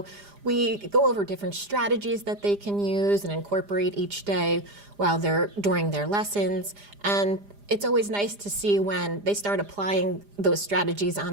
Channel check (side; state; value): left; late; 4.9 ms